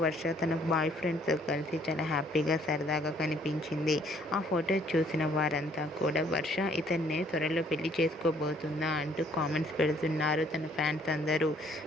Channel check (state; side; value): normal; both; correlation 0.63